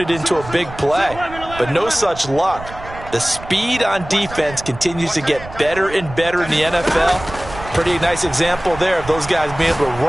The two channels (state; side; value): noise; right; rumble, 14 dB below the sound